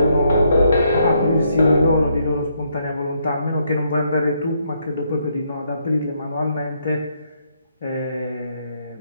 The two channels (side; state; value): both; inverted; correlation -0.74